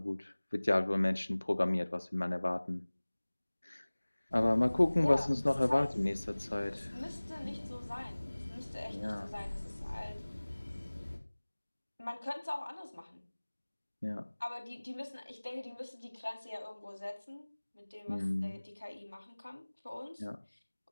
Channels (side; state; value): both; inverted; correlation -1.00